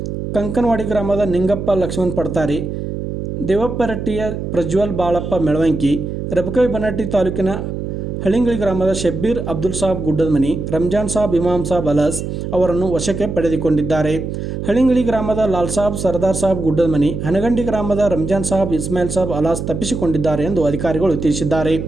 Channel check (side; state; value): right; noise; hum, 5 dB below the sound